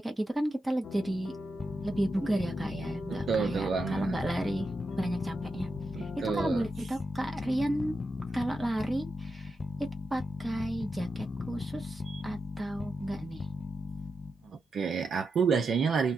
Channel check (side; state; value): both; normal; correlation 0.87